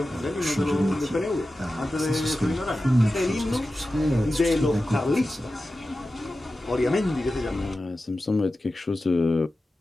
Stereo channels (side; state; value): both; normal; correlation 0.93